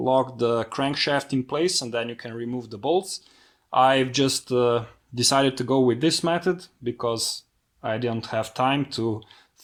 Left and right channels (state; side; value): identical; both; correlation 1.00